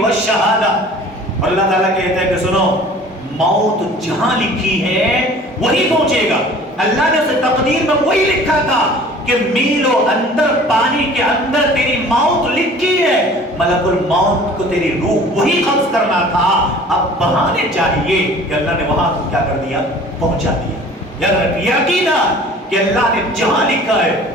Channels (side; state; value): both; normal; correlation 0.47